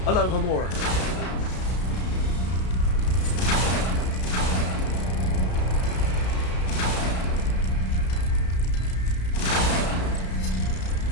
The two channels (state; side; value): late; right; 33 ms